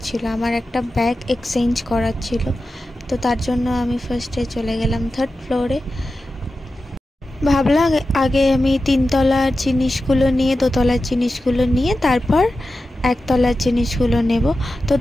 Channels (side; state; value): both; normal; correlation 0.92